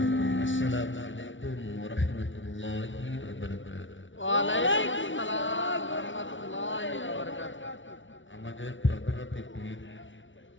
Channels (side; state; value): right; late; 0.56 ms